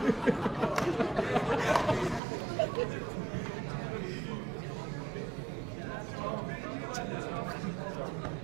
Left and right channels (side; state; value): left; drops out; at 2.2 s